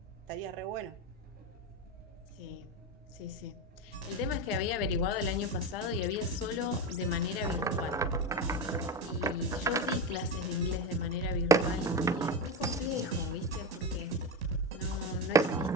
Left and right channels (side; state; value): both; normal; correlation 0.17